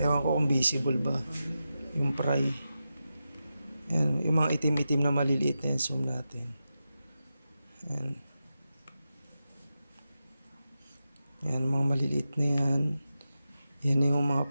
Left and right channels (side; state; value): both; inverted; correlation -0.91